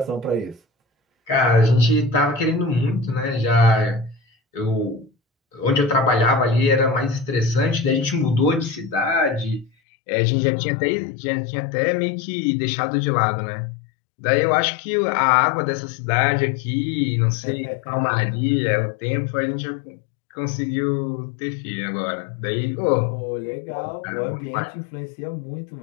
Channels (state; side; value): drops out; right; at 9.7 s